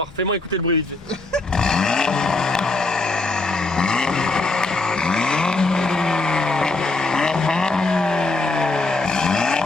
Fais-moi écouter le bruit vite fait.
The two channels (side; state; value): right; quieter; 3.2 dB